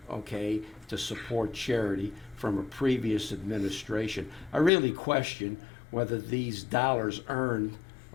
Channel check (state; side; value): drops out; right; at 4.7 s